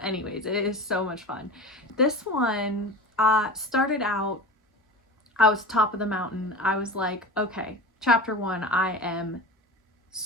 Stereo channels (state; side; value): normal; both; correlation 0.31